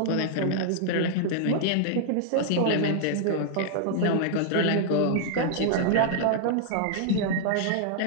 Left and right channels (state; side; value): different; both; correlation -0.01